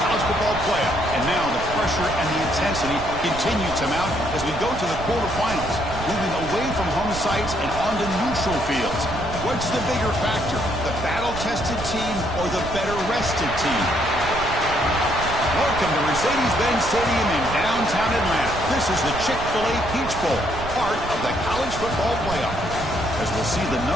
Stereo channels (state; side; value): noise; right; rumble, 9 dB below the sound